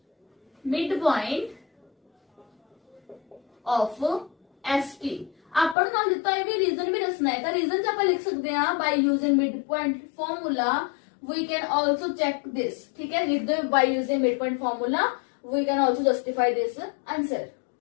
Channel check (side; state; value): right; drops out; at 5.8 s